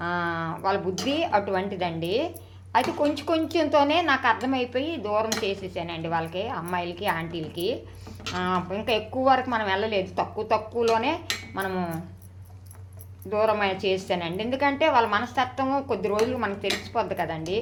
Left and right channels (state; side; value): identical; both; correlation 1.00